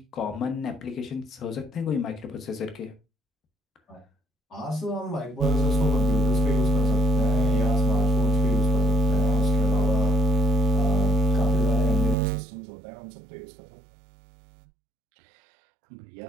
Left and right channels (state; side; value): drops out; left; at 12.2 s